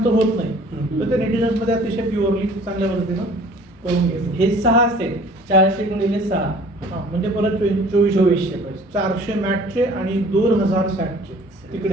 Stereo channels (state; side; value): normal; both; correlation 0.51